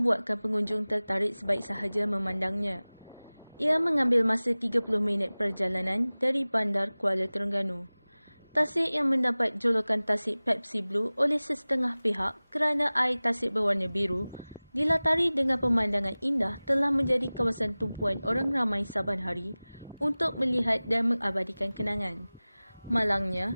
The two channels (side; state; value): both; inverted; correlation -0.99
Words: pengunjung tertarik sebaik sahaja memandangnya. Ia mengambil masa 30 minit perjalanan dari Bandar Kuala Terengganu. Tasik yang mendapat julukan Tasik Pepsi Blue oleh sesetengah pihak kerana air tasik berwarna biru, dilatari dengan pemandangan indah telah menjadi kawasan tumpuan orang ramai saban hari untuk melihat dan mengabadikan kenangan.